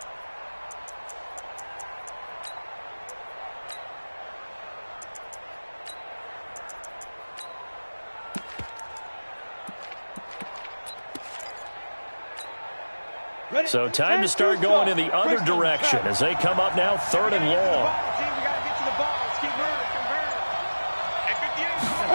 So time to start going in the other direction as they come up now 3rd and long.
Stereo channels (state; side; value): inverted; both; correlation -1.00